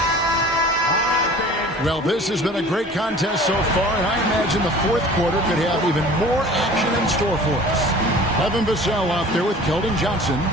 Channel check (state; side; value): normal; both; correlation 0.44